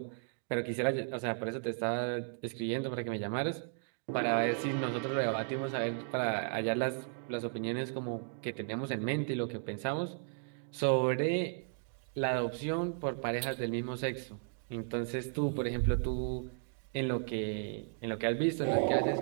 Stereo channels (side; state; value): left; silent; digital silence